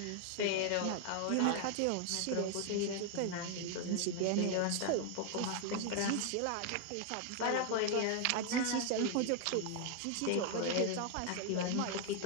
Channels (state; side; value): different; both; correlation 0.00